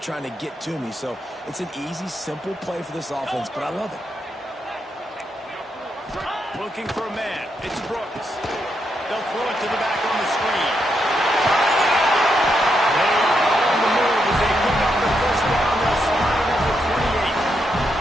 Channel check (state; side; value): normal; both; correlation 0.81